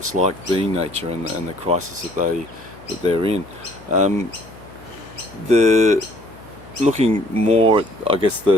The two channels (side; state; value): left; noise; hum, 21 dB below the sound